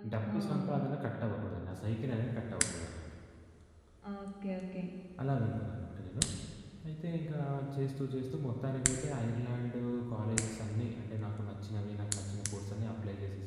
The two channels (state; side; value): identical; both; correlation 1.00